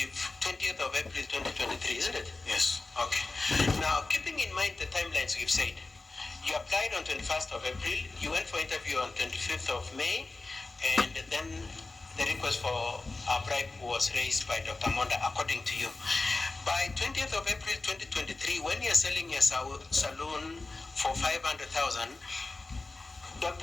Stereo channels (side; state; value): right; quieter; 3.4 dB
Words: of April 2023, isn't it? Yes. Okay. Now, keeping in mind the timelines we've said, you applied on 21st of April, you went for interview on 25th of May, and then the request for a bribe was raised by Dr. Monda, according to you. By 20th of April 2023, when you're selling your saloon for 500,000,